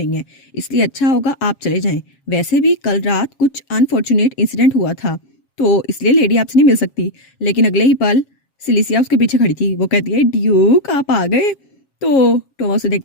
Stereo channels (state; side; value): late; right; 7.3 ms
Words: है, इसलिए अच्छा होगा आप चले जाएं। वैसे भी कल रात कुछ अनफॉर्चुनेट इंसिडेंट हुआ था, तो इसलिए लेडी आपसे नहीं मिल सकती। लेकिन अगले ही पल सिलिसिया उसके पीछे खड़ी थी। वो कहती है, ड्यूक आप आ गए। तो टोमा उसे